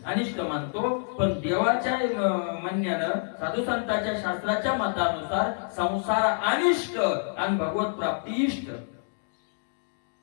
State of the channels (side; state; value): right; silent; digital silence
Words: अनिष्ट मानतो. पण देवाच्या म्हणण्यानं, साधू संतांच्या शास्त्राच्या मतानुसार संसार अनिष्ट आणि भगवत प्राप्ती इष्ट.